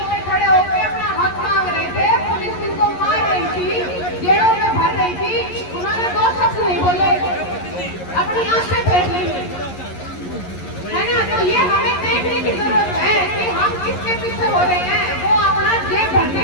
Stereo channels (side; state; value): right; late; 11 ms